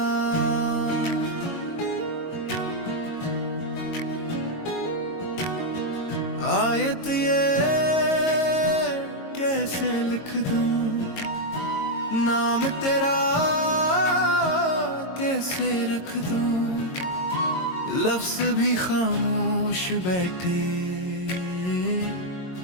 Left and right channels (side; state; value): right; late; 22 ms